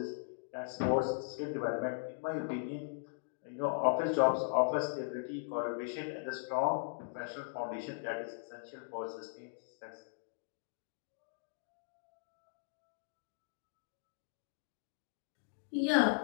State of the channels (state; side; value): silent; right; digital silence